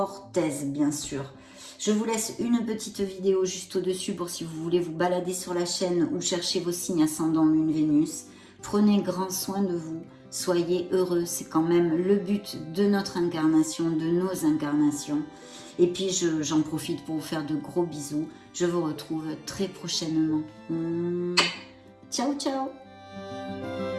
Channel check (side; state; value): both; identical; correlation 1.00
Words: aise, bien sûr. Je vous laisse une petite vidéo juste au-dessus pour si vous voulez vous balader sur la chaîne ou chercher vos signes ascendant Lune Vénus. Prenez grand soin de vous, soyez heureux, c'est quand même le but de notre incarnation, de nos incarnations. Et puis j'en profite pour vous faire de gros bisous. Je vous retrouve très prochainement. Ciao, ciao!